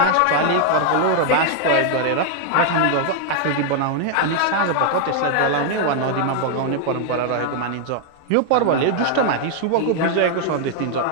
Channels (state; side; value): different; both; correlation 0.00